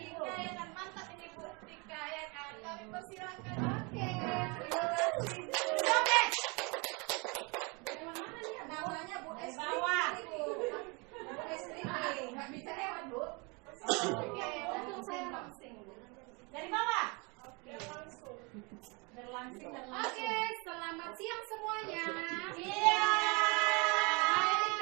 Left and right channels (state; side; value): quieter; left; 29.9 dB